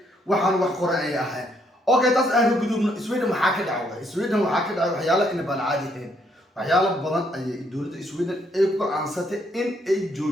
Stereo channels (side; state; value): both; normal; correlation 0.71